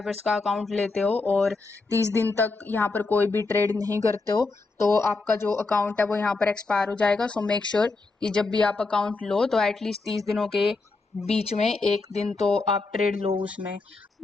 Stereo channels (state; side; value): quieter; right; 3.7 dB